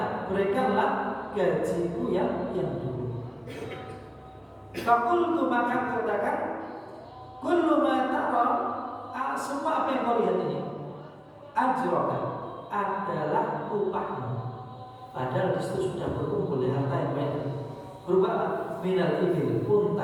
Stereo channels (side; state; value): both; identical; correlation 1.00